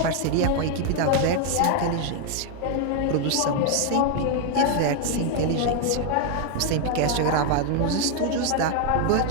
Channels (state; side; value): different; both; correlation 0.00